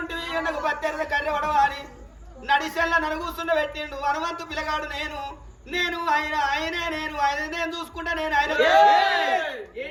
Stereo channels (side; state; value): both; identical; correlation 1.00